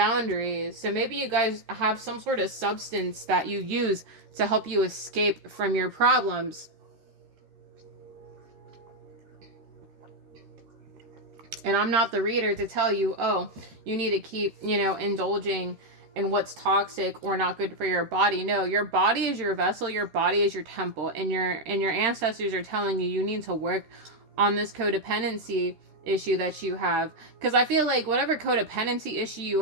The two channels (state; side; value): late; left; 13 ms